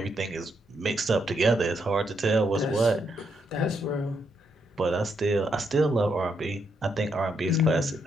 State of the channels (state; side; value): normal; both; correlation 0.78